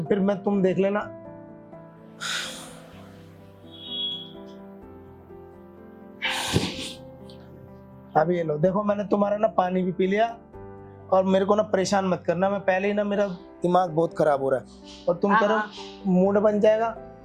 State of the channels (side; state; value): both; identical; correlation 1.00